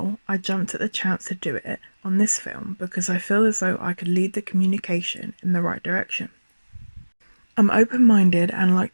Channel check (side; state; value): both; inverted; correlation -1.00